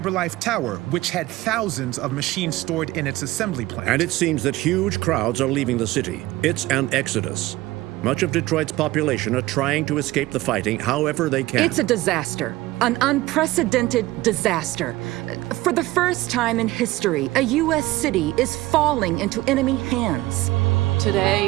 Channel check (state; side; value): quieter; left; 18.1 dB